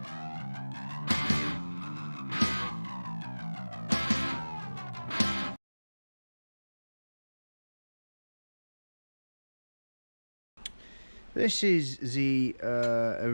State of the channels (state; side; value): inverted; both; correlation -1.00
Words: This is the